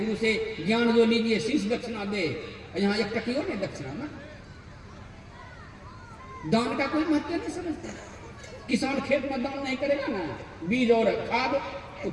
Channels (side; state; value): both; identical; correlation 1.00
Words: से ज्ञान जो लीजिए, शीश दक्षिणा दे। यहाँ 1 टकियों ने दक्षिणा ना, दान का कोई महत्व नहीं समझता। किसान खेत में दान नहीं करेगा ना, बीज और खाद, तो